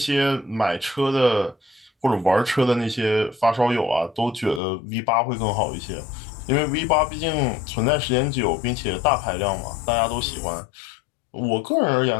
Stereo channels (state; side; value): drops out; right; at 4.6 s